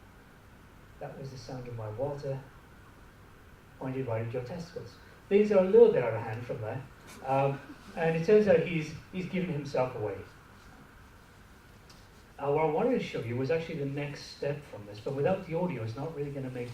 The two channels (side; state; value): both; identical; correlation 1.00